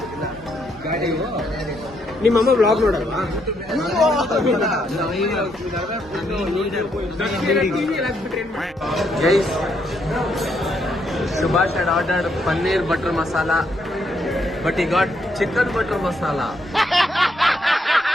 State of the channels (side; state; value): both; normal; correlation 0.75